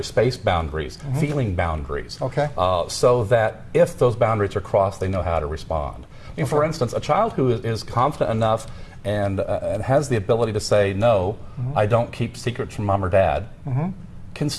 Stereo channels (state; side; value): identical; both; correlation 1.00